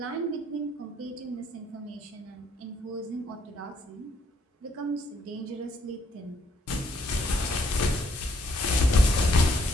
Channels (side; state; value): both; normal; correlation 0.69